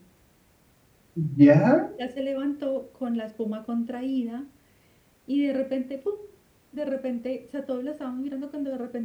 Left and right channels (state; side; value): identical; both; correlation 1.00